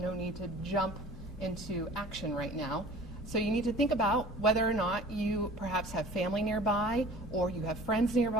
no need to jump into action right now. So you need to think about whether or not you perhaps have family nearby, or you have friends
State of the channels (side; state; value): both; normal; correlation 0.44